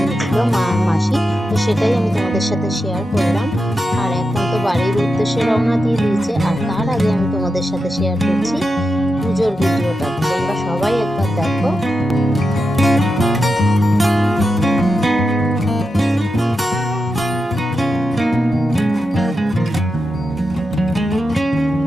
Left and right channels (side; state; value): both; normal; correlation 0.88